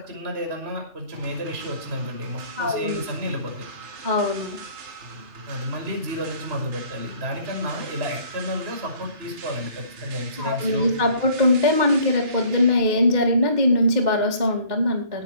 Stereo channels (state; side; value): late; left; 2.1 ms